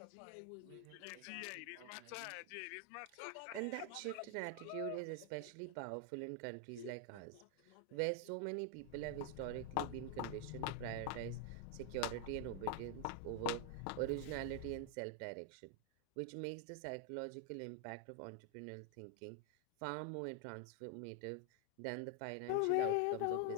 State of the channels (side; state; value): both; different; correlation 0.00